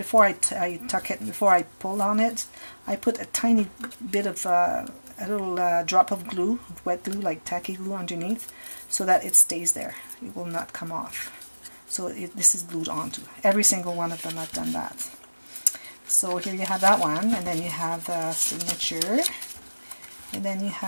I tuck it, before I pull on it, I put a tiny bit of a little drop of glue, wet glue, like tacky glue underneath, so that it stays there. It will not come off. So this is glued onto. Every single one of them I've done that. So here you have that one, and then you have the signature, and then you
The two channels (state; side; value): inverted; both; correlation -1.00